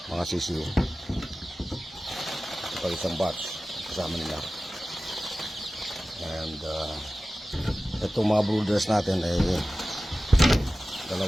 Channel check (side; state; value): both; normal; correlation 0.96